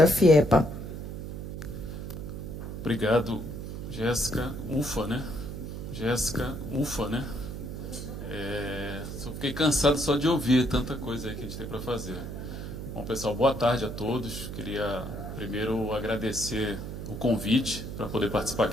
FIEPA. Obrigado, Jéssica. Ufa, né? Jéssica, ufa, né? Só fiquei cansado só de ouvir tanta coisa aí que a gente tem para fazer. Bom, pessoal, boa tarde a todos. Queria primeiro agradecer o convite para poder participar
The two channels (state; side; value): noise; right; hum, 7 dB below the sound